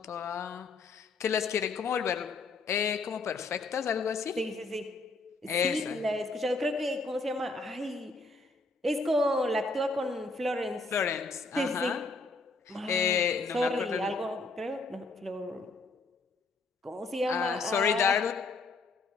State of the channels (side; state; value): right; quieter; 3.6 dB